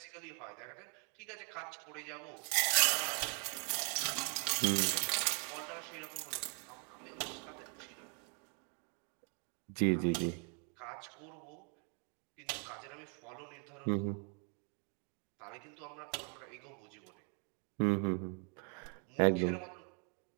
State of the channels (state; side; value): quieter; left; 38.9 dB